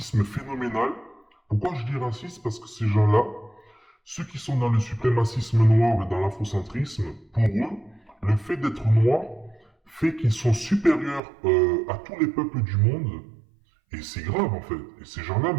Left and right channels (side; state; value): left; drops out; at 11.2 s